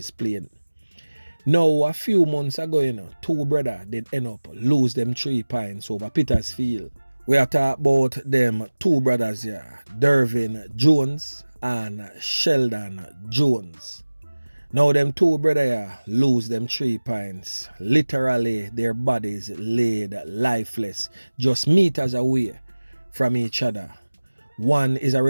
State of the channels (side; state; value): both; inverted; correlation -1.00